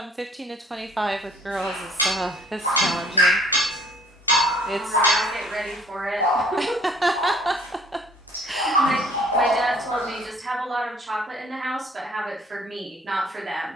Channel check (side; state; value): both; normal; correlation 0.57